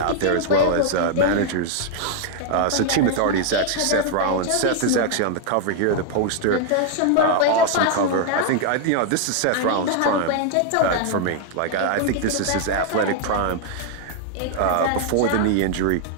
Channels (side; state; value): both; different; correlation 0.00